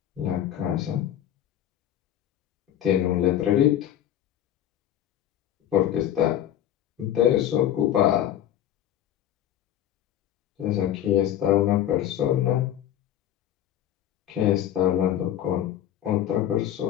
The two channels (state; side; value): quieter; right; 11.4 dB